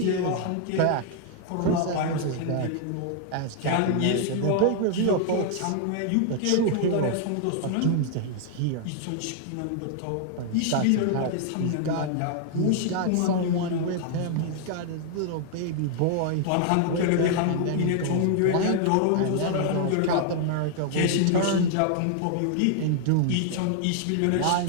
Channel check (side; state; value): both; different; correlation 0.00